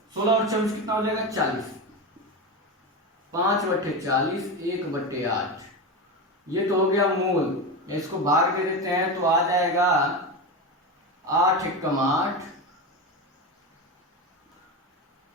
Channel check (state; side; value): normal; both; correlation 0.19